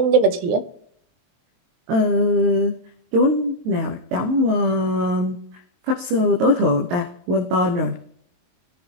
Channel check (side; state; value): left; late; 22 ms